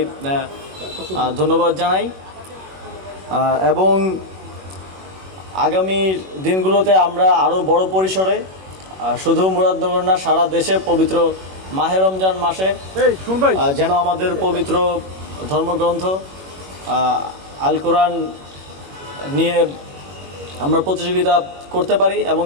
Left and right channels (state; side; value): late; left; 21 ms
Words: ধন্যবাদ জানাই। এবং আগামী দিনগুলোতে আমরা আরও বড় পরিসরে শুধু মুরাদনগর না, সারা দেশে পবিত্র মাহে রমজান মাসে যেন আমাদের পবিত্র ধর্মগ্রন্থ আল কোরআন নিয়ে আমরা প্রতিযোগিতা করতে পারি এবং